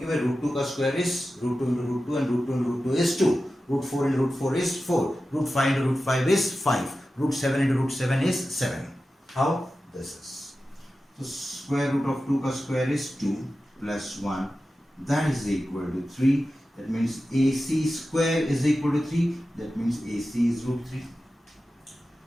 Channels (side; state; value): both; normal; correlation 0.93